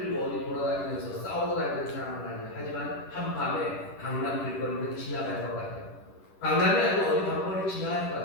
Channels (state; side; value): late; right; 10 ms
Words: 어디 돌아다니면서 싸우고 다니는 사람은 아니에요. 하지만 한밤에 강남 길거리는 지나갈 것 같아요. 강남이 아니고 어디 방법을 지나갈 것